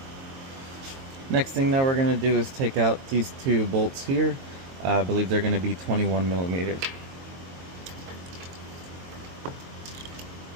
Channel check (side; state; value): left; late; 22 ms